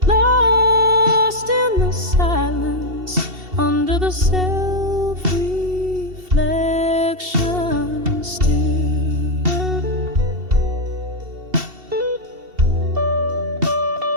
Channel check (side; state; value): left; late; 2.7 ms